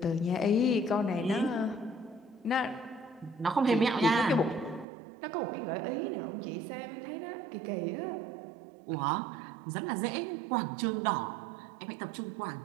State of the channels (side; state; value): left; drops out; at 4.9 s